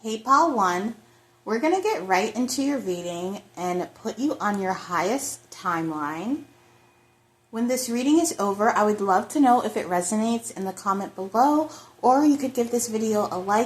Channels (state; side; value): identical; both; correlation 1.00